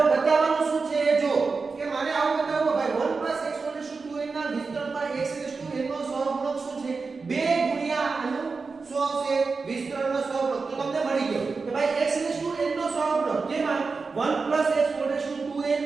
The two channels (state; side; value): quieter; left; 4.5 dB